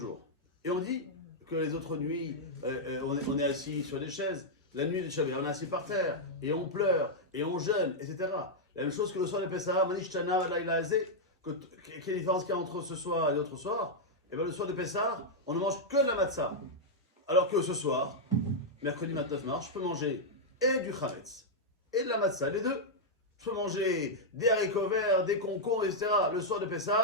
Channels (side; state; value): both; normal; correlation -0.05